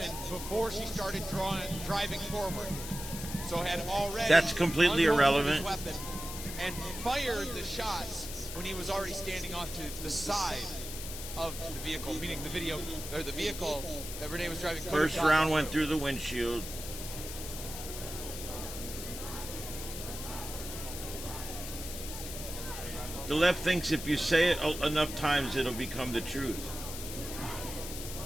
before she started driving forward. So had already That's completely irrelevant. His weapon and fired the shots when he was already standing off to the side of the vehicle, meaning the vehicle that Renee was driving. First round went through the windshield. The left thinks if you say it enough times, it'll become the truth.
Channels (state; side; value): noise; left; hiss, 8 dB below the sound